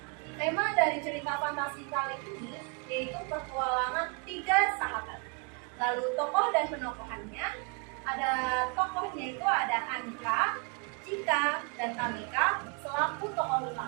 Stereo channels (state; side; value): quieter; left; 34.9 dB